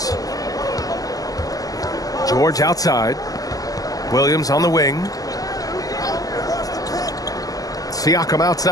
George outside. Williams on the wing. Siakam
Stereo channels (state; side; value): late; right; 0.17 ms